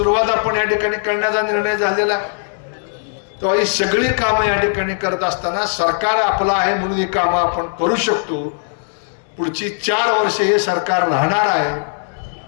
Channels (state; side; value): silent; right; digital silence